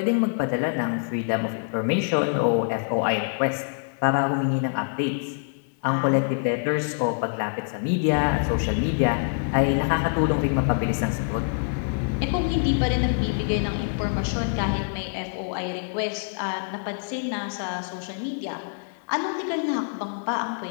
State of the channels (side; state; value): right; silent; 60 dB below the other